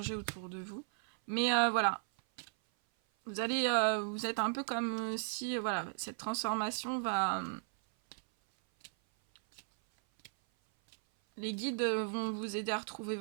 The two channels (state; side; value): silent; left; 54 dB below the other